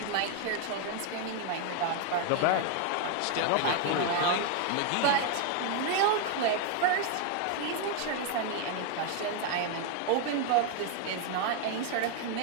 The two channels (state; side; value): different; both; correlation 0.01